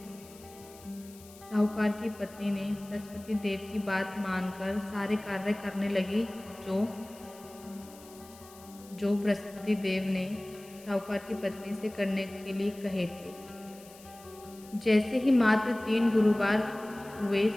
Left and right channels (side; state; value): left; noise; hiss, 21 dB below the sound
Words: साहूकार की पत्नी ने बृहस्पति देव की बात मानकर सारे कार्य करने लगी जो बृहस्पति देव ने साहूकार की पत्नी से करने के लिए कहे थे। जैसे ही मात्र 3 गुरुवार हुए,